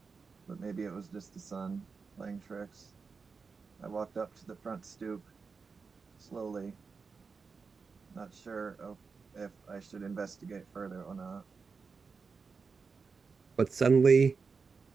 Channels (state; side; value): quieter; left; 5.0 dB